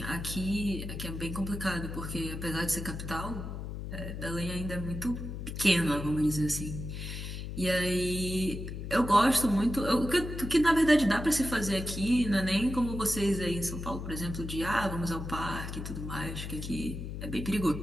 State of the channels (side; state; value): left; noise; hum, 7 dB below the sound